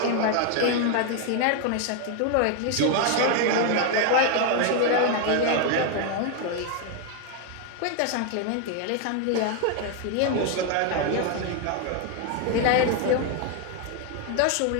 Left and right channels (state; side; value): different; both; correlation 0.00